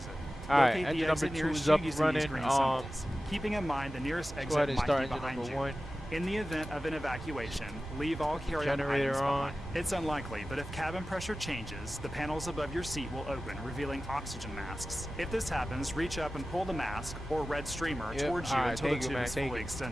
Alright, Locate engine the number exit 2 nearest is you up and using these running. green symbols. Keeping in mind the nearest Go exit ahead and might start be engine behind number you. 1. In the event of an evacuation, leave all carry-on Generator items on. behind. It's unlikely, but if cabin pressure changes, the panels above your seat will open, revealing oxygen masks. If this happens, reach up and pull the mask or red streamer Yep, towards you alright, until the thank you, tube man, is thank fully you.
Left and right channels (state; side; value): normal; both; correlation 0.95